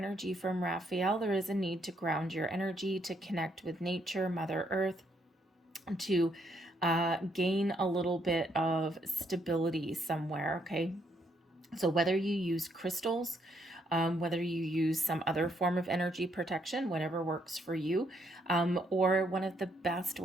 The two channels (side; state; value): both; normal; correlation 0.73